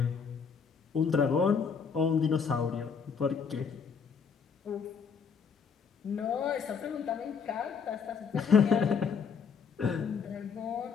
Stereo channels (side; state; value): right; quieter; 6.1 dB